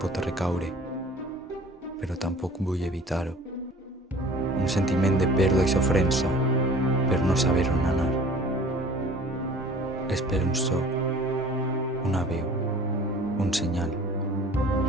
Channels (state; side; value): normal; both; correlation 0.47